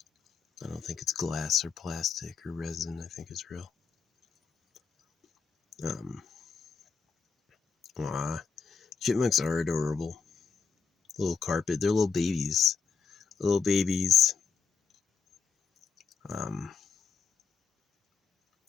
I don't think it's glass or plastic or resin. I think it's real. Chipmunks are adorable. Little carpet. They're little babies. Little babies.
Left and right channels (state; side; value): quieter; right; 5.6 dB